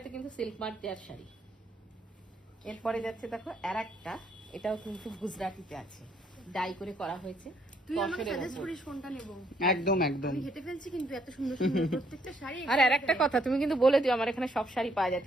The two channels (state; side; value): normal; both; correlation 0.70